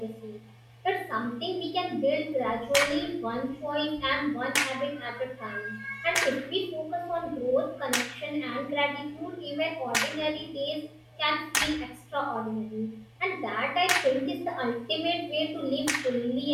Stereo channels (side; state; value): both; identical; correlation 1.00